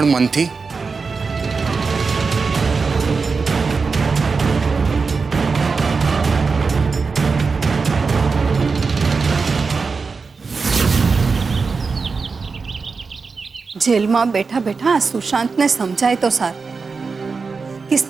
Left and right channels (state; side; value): quieter; left; 4.7 dB